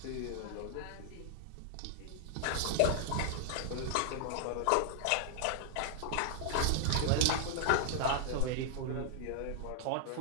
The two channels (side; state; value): both; different; correlation 0.00